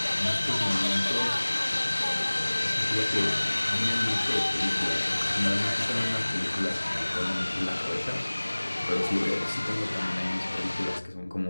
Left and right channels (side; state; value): both; inverted; correlation -1.00